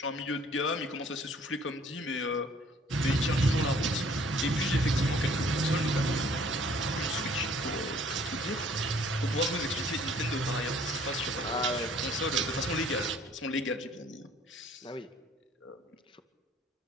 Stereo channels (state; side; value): normal; both; correlation 0.57